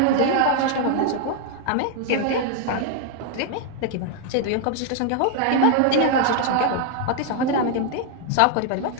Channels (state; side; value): different; both; correlation 0.00